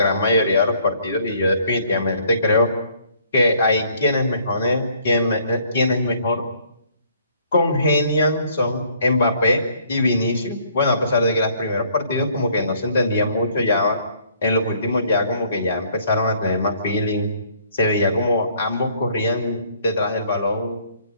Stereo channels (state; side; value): inverted; both; correlation -0.63